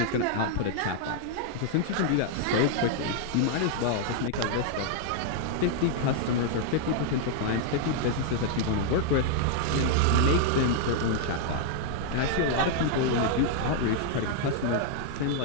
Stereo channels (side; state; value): both; different; correlation -0.01